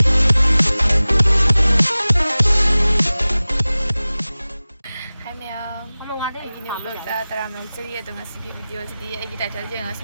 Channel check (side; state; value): both; inverted; correlation -0.98